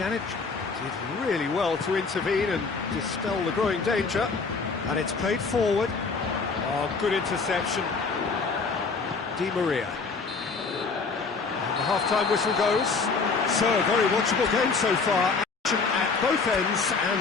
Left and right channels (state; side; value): quieter; right; 4.6 dB